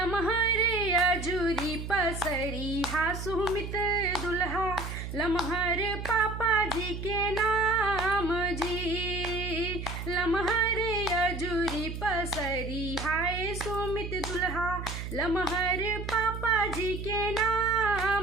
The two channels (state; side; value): noise; right; hum, 7 dB below the sound